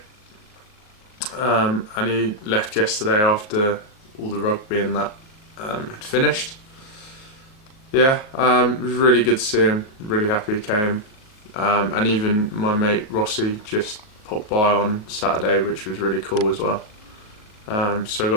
and he left yesterday after all the rugby and that had finished. Yeah, it was really good to see him, really happy he came. And even my mate Rossi just popped by on Saturday, which was really cool as well. So I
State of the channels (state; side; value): late; right; 38 ms